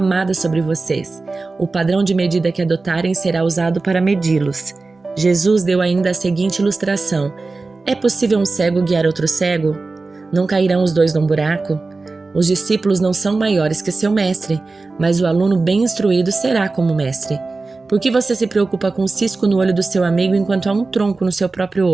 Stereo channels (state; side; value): quieter; left; 3.7 dB